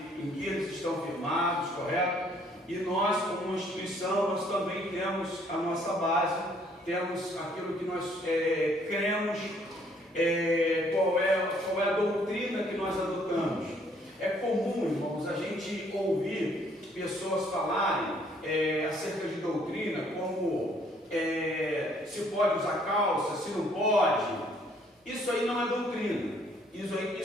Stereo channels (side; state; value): both; normal; correlation 0.64